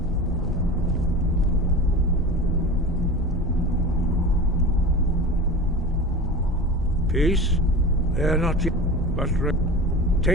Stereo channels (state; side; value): normal; both; correlation 0.32